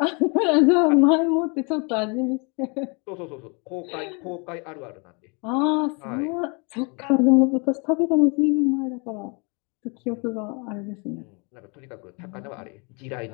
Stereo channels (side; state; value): right; quieter; 32.6 dB